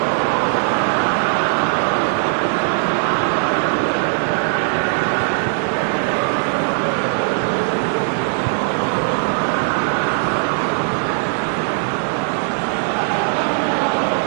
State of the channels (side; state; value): left; silent; 57 dB below the other